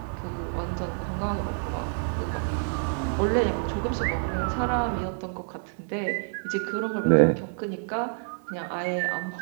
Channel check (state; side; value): silent; left; 59 dB below the other